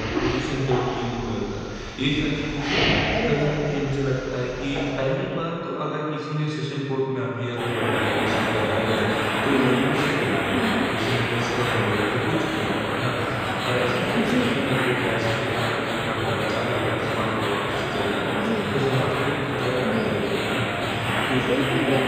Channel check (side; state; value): both; identical; correlation 1.00